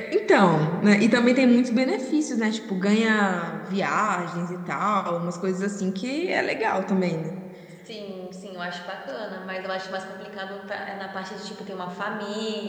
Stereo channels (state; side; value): identical; both; correlation 1.00